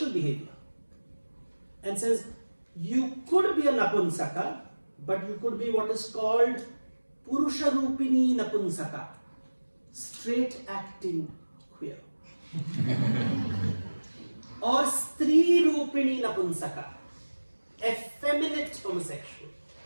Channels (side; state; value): both; inverted; correlation -1.00